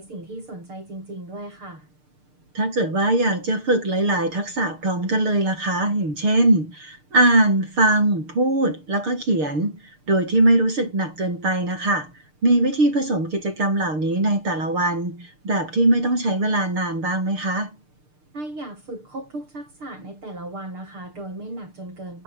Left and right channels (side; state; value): left; late; 6.6 ms